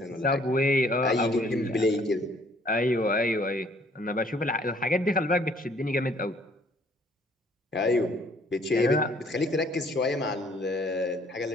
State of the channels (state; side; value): normal; both; correlation 0.61